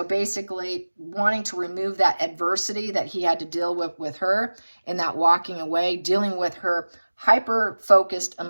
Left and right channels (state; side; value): inverted; both; correlation -1.00